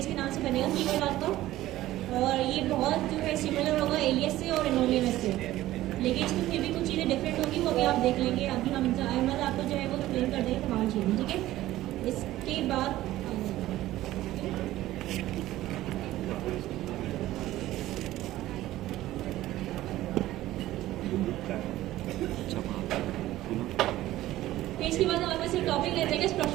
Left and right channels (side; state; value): left; quieter; 15.3 dB